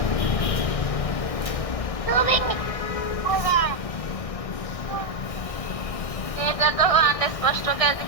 এটা তো অনেক স্পষ্ট কাজ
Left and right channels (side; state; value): right; late; 1.6 ms